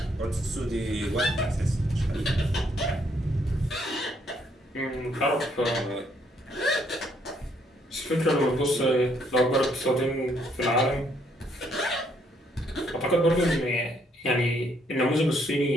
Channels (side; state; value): both; normal; correlation 0.69